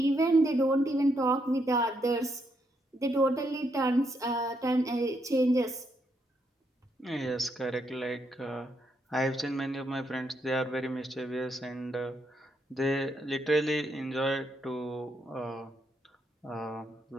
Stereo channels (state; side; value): normal; both; correlation 0.77